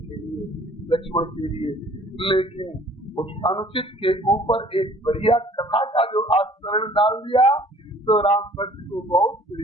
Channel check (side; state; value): both; normal; correlation 0.53